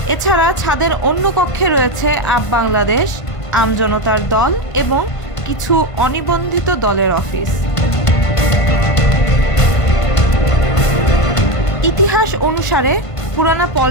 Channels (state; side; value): late; right; 1.5 ms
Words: এছাড়া ছাদের অন্য কক্ষে রয়েছে আপ বাংলাদেশ, আমজনতার দল এবং কিছু অনিবন্ধিত দলের অফিস। ইতিহাস অনুসারে পুরানা